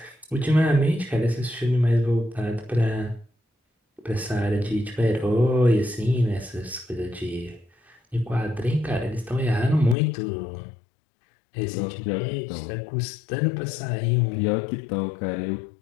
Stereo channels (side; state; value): right; drops out; at 10.0 s